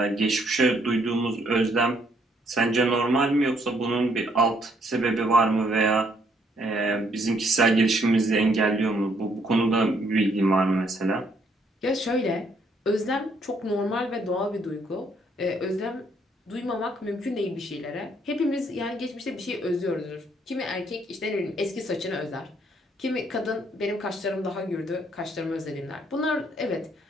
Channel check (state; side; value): normal; both; correlation 0.69